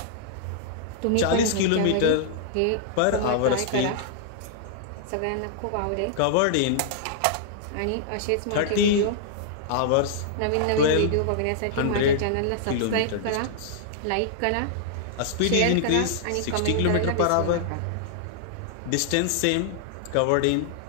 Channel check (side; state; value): both; different; correlation -0.01